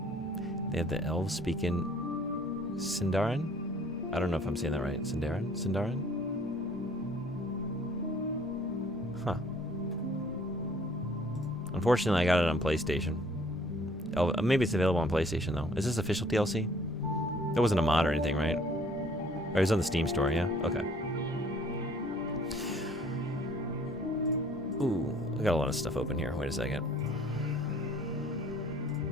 They have the elves speaking Sindarin? I don't know if I'm saying that right. Sindarin? Huh. Unfortunately, I got it on PlayStation. Oh, maybe it's available on PlayStation, though. Is this official DLC? It wasn't a mod or anything, right? Or it was on the Steam store, yeah? Okay. Ooh, I got a lot of stuff open here. Wait a second.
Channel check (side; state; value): both; normal; correlation 0.57